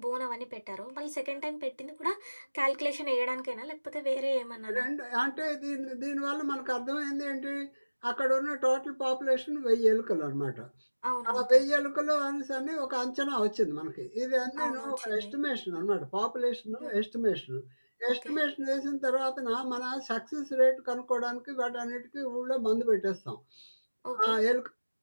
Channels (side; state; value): both; inverted; correlation -1.00